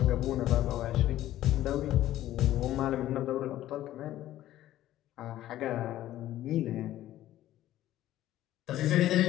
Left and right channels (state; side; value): quieter; right; 13.7 dB